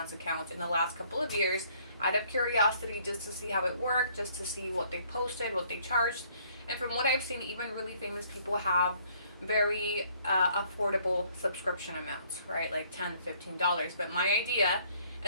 accounts in the last couple of years out of curiosity, just to see how it worked, just to see what they posted, what they charged. And from what I've seen, even really famous people have very affordable subscription amounts, right? Like $10, $15. But my idea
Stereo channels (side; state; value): both; inverted; correlation -0.63